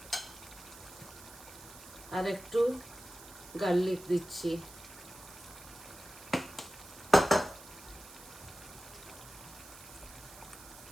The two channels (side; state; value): right; noise; hiss, 17 dB below the sound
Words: আর একটু গার্লিক দিচ্ছি।